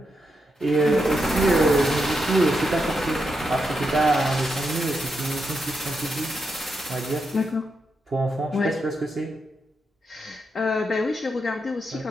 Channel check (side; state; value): both; normal; correlation 0.84